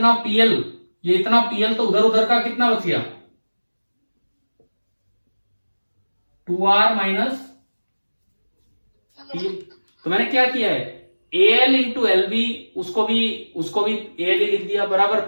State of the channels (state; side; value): inverted; both; correlation -1.00